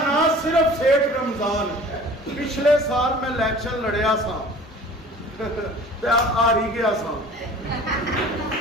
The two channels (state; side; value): normal; both; correlation 0.45